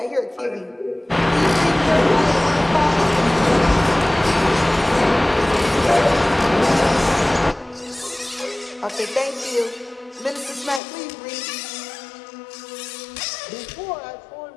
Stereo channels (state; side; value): drops out; right; at 10.8 s